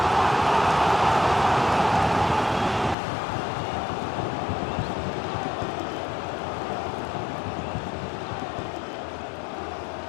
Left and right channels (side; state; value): right; drops out; at 3.0 s